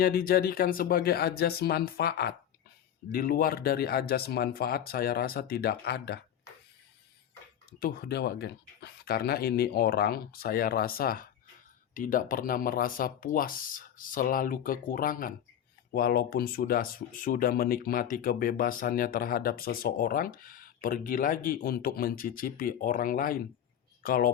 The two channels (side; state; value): right; quieter; 9.8 dB